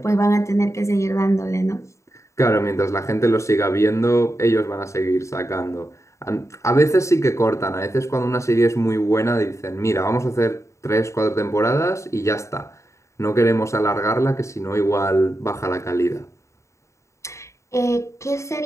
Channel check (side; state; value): right; late; 0.14 ms